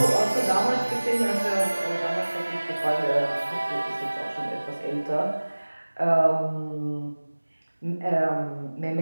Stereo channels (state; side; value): inverted; both; correlation -1.00